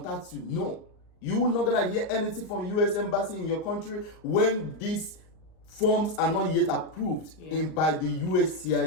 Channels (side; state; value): right; late; 38 ms